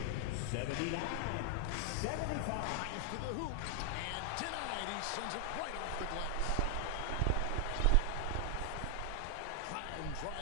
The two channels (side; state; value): both; different; correlation 0.00